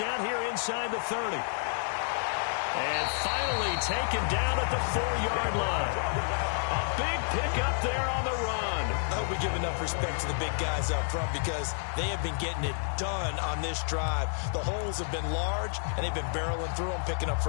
here inside the 30. And finally taken down at the 4-yard line. A big pickup there on the run. I hope we give enough respect to the big guys up front because they have been getting it done on this drive. The holes have been large, and they've been barreling through them, picking up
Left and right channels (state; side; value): silent; right; digital silence